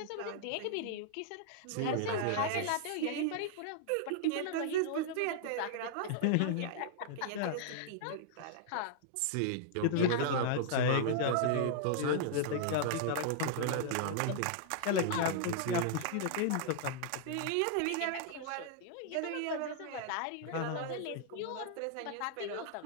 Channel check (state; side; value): different; both; correlation -0.01